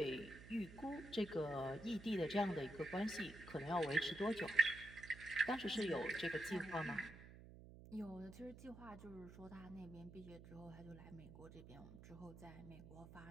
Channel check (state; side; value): noise; right; hum, 15 dB below the sound